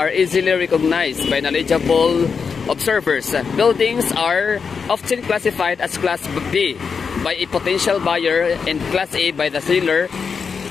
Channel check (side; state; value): right; quieter; 5.8 dB